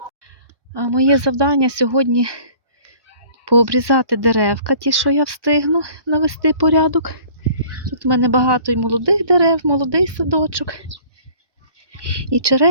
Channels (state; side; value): late; left; 1.1 ms